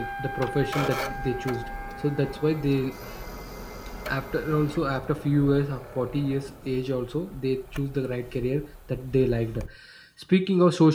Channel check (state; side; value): identical; both; correlation 1.00